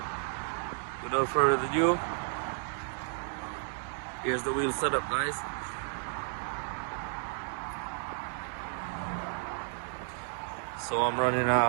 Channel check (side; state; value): left; silent; 56 dB below the other